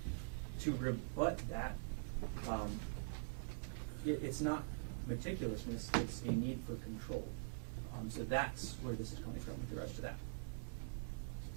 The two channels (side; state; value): left; silent; digital silence